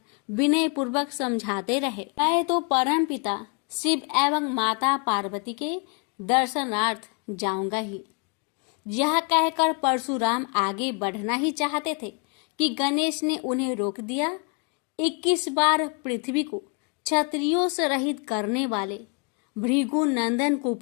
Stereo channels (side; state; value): right; quieter; 34.7 dB